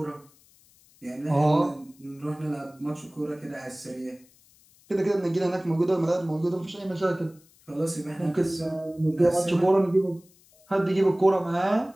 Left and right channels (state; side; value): noise; left; hiss, 29 dB below the sound